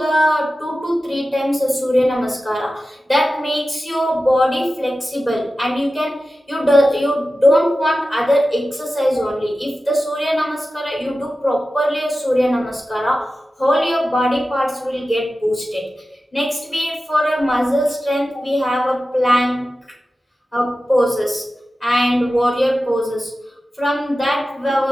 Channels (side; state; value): both; normal; correlation 0.94